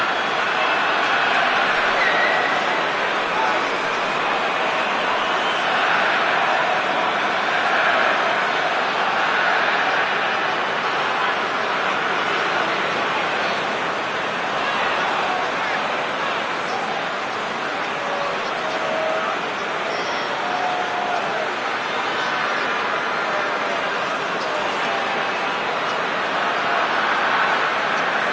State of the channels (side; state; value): both; identical; correlation 1.00